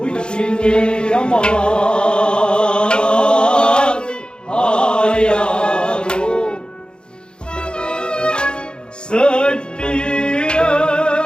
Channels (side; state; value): right; late; 0.050 ms